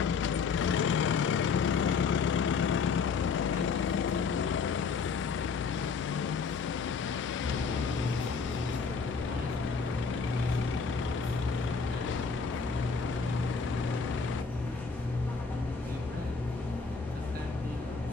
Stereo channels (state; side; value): quieter; right; 5.3 dB